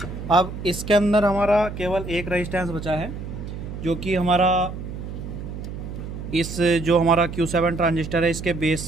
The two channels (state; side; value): noise; right; hum, 8 dB below the sound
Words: अब इसके अंदर हमारा केवल एक रेजिस्टेंस बचा है, जो कि हमारा इस जो हमारा Q7 ट्रांजिस्टर है, इसके